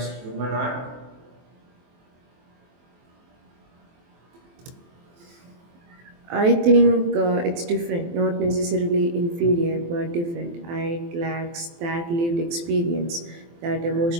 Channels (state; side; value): late; left; 23 ms